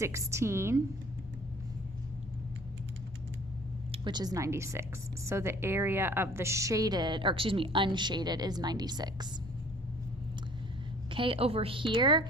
which is 96. So the area of the shaded, or excuse me, unshaded is 96. Okay, over here,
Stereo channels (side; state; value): both; normal; correlation 0.53